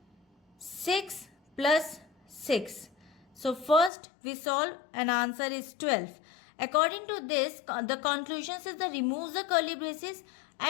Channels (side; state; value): right; drops out; at 3.9 s